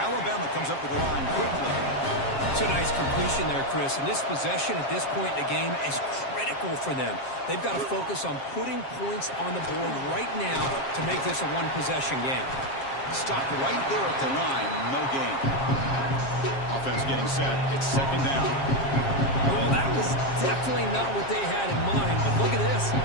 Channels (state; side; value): late; right; 7.4 ms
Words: Alabama comes up with the line quickly. It's a nice completion there, Chris. And this possession at this point in the game is critical for them. They've got to focus on putting points on the board right now to make this a one-possession game. Stopped right there at the line. No gain. Offense getting set. It's second down. Well, that was definitely not what they had in mind. But look at this.